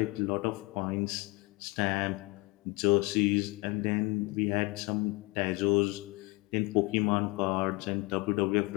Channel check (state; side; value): quieter; right; 24.7 dB